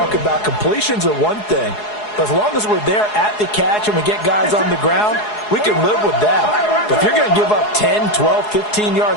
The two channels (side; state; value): right; late; 4.8 ms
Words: about completions are one thing, but as long as we're there at the catch and we get guys on the ground, we can live with that. But if you're going to give up 10, 12, 15